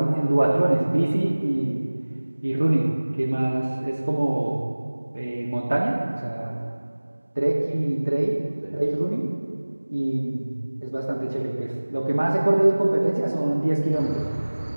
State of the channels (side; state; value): both; inverted; correlation -1.00